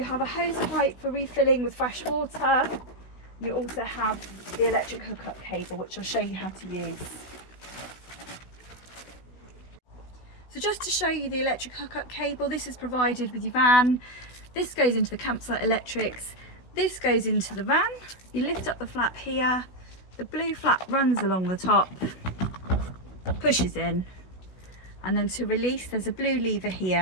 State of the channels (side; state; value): right; late; 16 ms